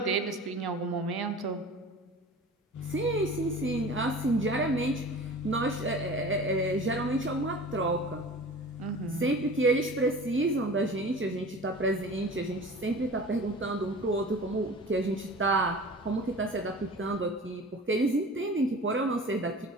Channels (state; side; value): normal; both; correlation 0.39